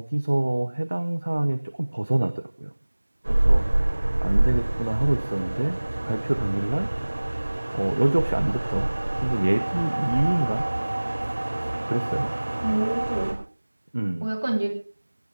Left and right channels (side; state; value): both; inverted; correlation -1.00